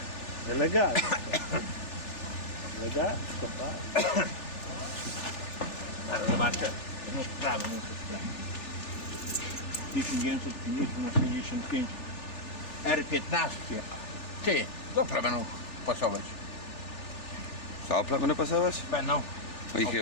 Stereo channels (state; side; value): late; right; 3.4 ms